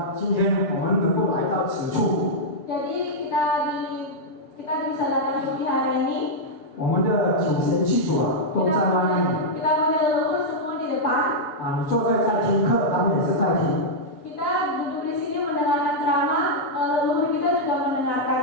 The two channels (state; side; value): late; right; 6.8 ms